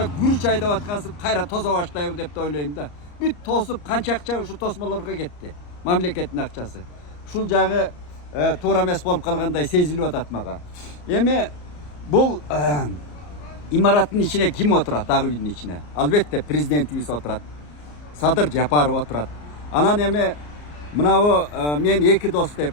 күрүч айдап аткансып кайра тозо баштайбы деп ойлойм да. Бүт тосуп канча акча ушу тосмолорго кетти. Мамлекеттин акчасы. Ушул жагы туура эмес болуп калгандай сезилип атат мага. Эми бул имараттын ичине ким отурат? Ак үйдүн ичине. Албетте президентибиз отурат. Садыр Жапаров отурат. Анан эми мынабу мен эки дос деп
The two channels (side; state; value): right; late; 34 ms